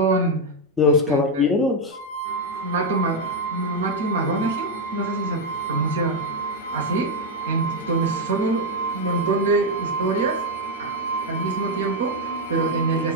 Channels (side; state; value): both; normal; correlation 0.02